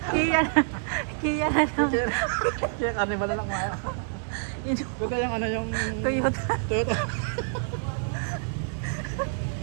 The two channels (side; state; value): left; silent; digital silence